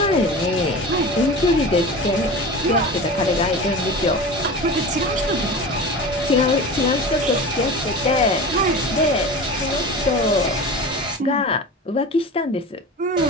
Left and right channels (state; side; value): normal; both; correlation 0.32